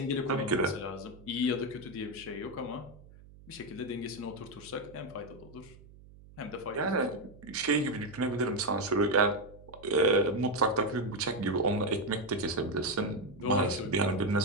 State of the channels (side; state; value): right; noise; hum, 21 dB below the sound